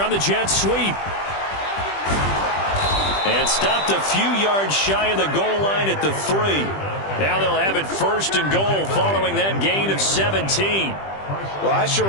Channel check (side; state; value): right; late; 20 ms